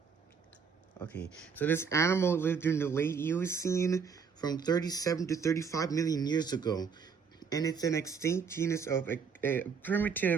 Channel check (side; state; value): left; quieter; 6.1 dB